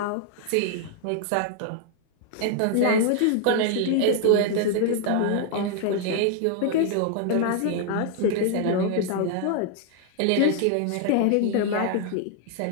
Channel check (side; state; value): both; different; correlation 0.00